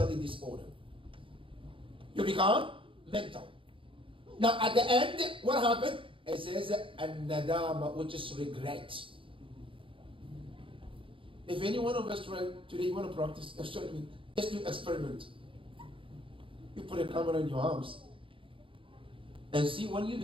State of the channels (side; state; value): left; late; 0.25 ms